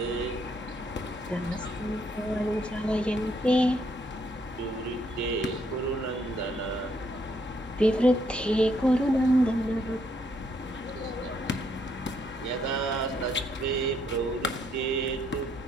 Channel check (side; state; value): both; normal; correlation 0.72